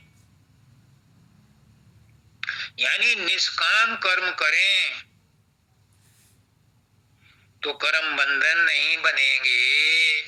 यानी निष्काम कर्म करें, तो कर्म बंधन नहीं बनेंगे।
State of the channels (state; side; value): identical; both; correlation 1.00